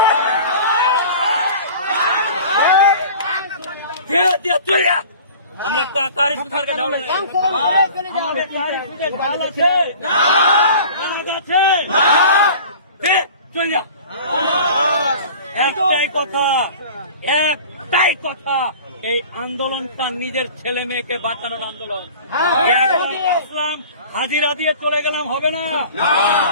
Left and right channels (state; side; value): inverted; both; correlation -0.42